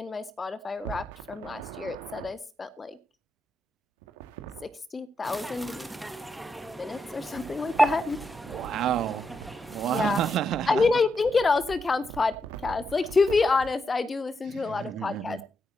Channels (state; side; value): normal; both; correlation 0.83